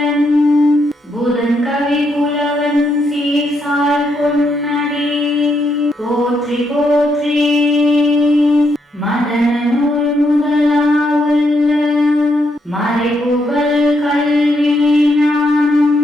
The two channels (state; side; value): normal; both; correlation 0.78